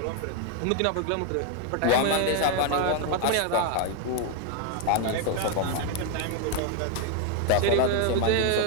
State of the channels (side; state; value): both; different; correlation 0.01